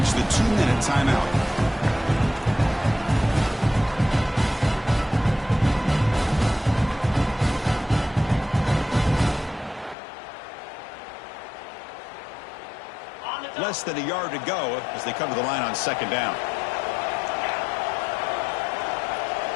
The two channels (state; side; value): drops out; right; at 10.0 s